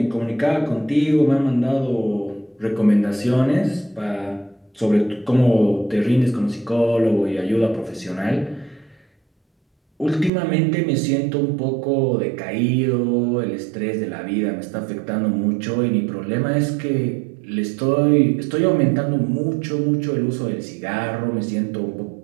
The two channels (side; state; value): left; drops out; at 10.3 s